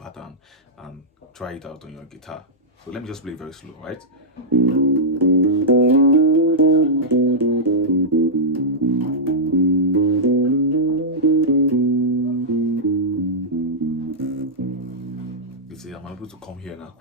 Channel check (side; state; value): both; normal; correlation -0.11